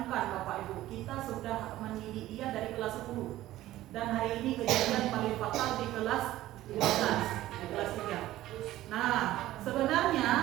Bapak Ibu, kita sudah mendidik dia dari kelas 10. Dan hari ini kejadian paling fatal di kelas 12, di kelas 3. Nah,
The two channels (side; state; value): left; quieter; 15.2 dB